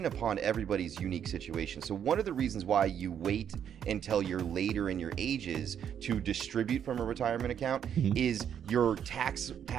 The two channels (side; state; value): left; quieter; 8.8 dB